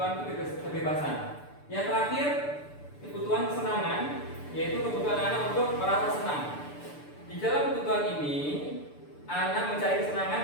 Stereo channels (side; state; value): right; late; 6.8 ms